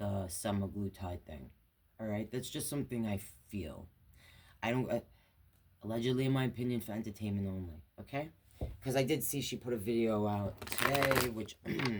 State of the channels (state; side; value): identical; both; correlation 1.00